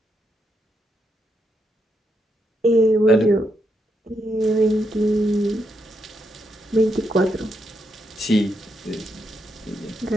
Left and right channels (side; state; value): both; normal; correlation 0.80